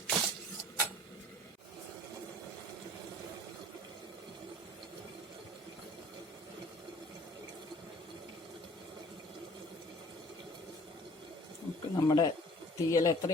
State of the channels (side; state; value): both; normal; correlation 0.50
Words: നമുക്ക് നമ്മുടെ തീയൽ